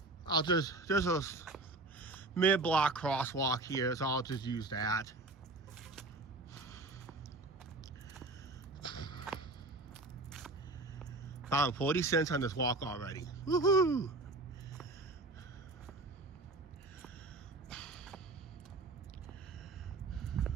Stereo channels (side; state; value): left; quieter; 3.0 dB